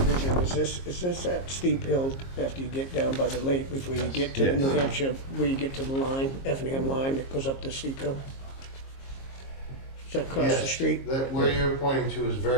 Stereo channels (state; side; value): late; right; 22 ms